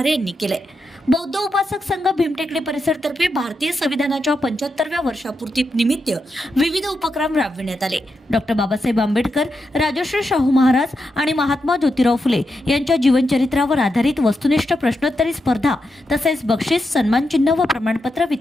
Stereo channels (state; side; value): normal; both; correlation 0.86